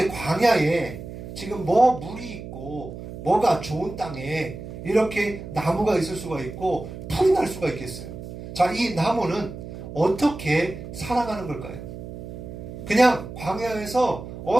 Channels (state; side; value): noise; right; hum, 11 dB below the sound